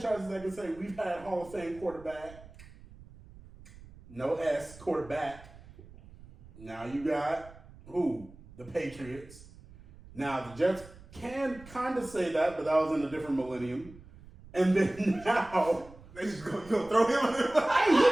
that can say we've had Hall of Fame quarterback, no S quarterback. Now you got who? The Patriots. Now the Jets can kind of say that, but that was in a different millennium. And then now They just gonna throw him on there. hey,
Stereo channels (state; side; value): noise; right; rumble, 20 dB below the sound